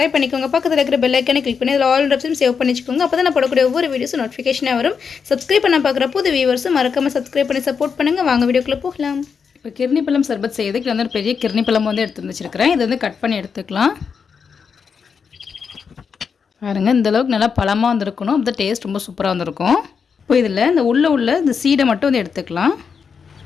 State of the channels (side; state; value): right; quieter; 6.1 dB